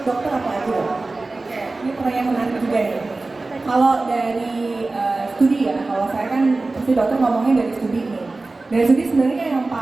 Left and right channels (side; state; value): left; quieter; 3.3 dB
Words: dokter apa aja? Oke, ini pertanyaan menarik juga nih. Kalau dari studi ya, kalau saya kan pasti dokter ngomongnya dari studi nih. Dari studi sebenarnya yang